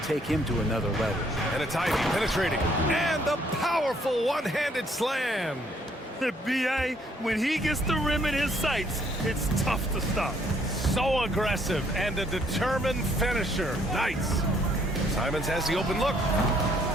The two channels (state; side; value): normal; both; correlation 0.66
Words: take him to another level. And it's Ivy penetrating, and the powerful one-handed slam. B.A., when he gets the rim in his sights, it's tough to stop. So aggressive and a determined finisher. Nice. Simons has the open look.